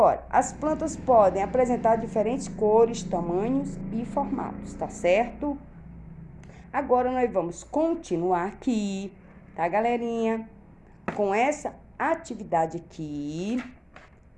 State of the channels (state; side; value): identical; both; correlation 1.00